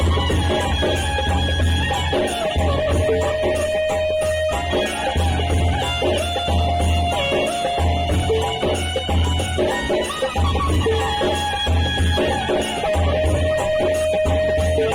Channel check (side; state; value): both; identical; correlation 1.00